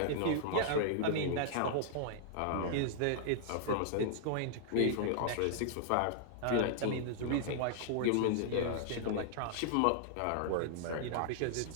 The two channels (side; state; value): both; different; correlation -0.01